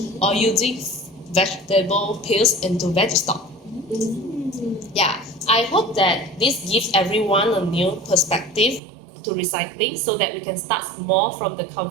or using vegetable peels into veg stock. Yeah, I hope that this gives everyone a new perspective to recycling so that we can start small from the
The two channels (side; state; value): left; drops out; at 8.8 s